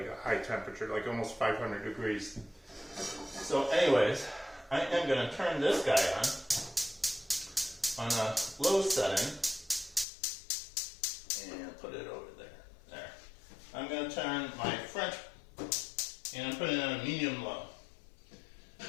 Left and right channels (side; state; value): right; drops out; at 10.1 s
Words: a high temperature, like almost 500 degrees. So, anyways, I am going to turn this guy on a low setting, and put it over there. There. I'm going to turn my French, and I'm putting it on a medium low.